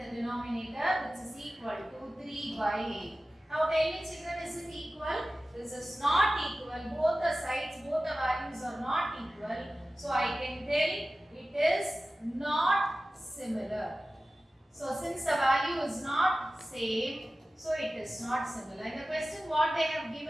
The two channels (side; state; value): both; normal; correlation 0.96